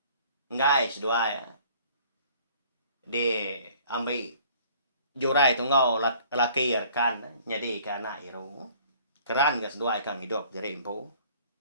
ngai sedua ya. Di ambil jurai tu ngau laki rekan jadi ke anak iru. Keran gas dua kang hidup jadi impu.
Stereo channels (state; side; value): inverted; both; correlation -0.54